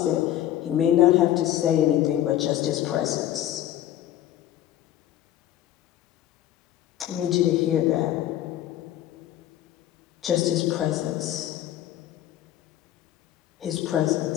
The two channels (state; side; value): quieter; right; 12.7 dB